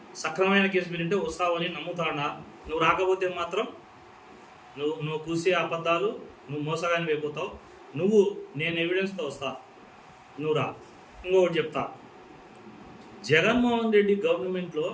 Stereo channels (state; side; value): identical; both; correlation 1.00